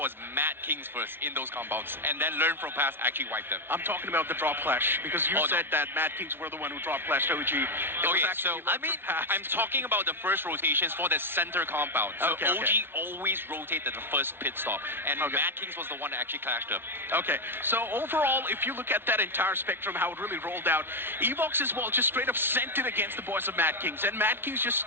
Mad Kings first in those compounds, and then Learn From Past actually wiped them. I'm talking about the drop clash because you said that Mad Kings were the one who drop clashed OG. I'm talking about the first rotations for the center compound. So OG always rotated the first pit stop, and Mad Kings was the one that actually clashed them. Okay, so overall, if you look at that entire spectrum, how it really rolled out, Evox as well just straight up sent it against the boys of Mad Kings, and Mad Kings just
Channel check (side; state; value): left; late; 0.11 ms